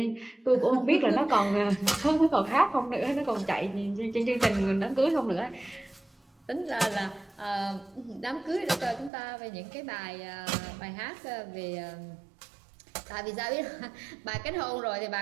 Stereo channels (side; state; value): left; drops out; at 9.1 s